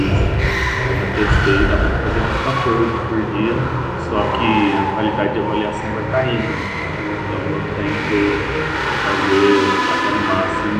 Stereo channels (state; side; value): identical; both; correlation 1.00